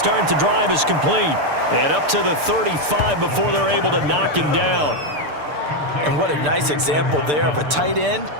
the drive is complete. And up to the 35 before they're able to knock him down. And what a nice example there of a tight end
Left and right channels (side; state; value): left; late; 6.8 ms